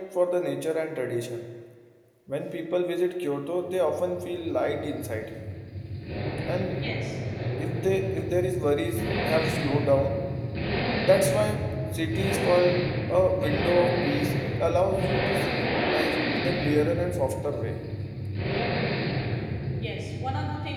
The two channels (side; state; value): both; identical; correlation 1.00